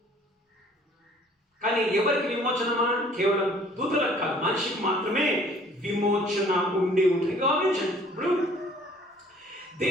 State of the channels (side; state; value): both; normal; correlation 0.55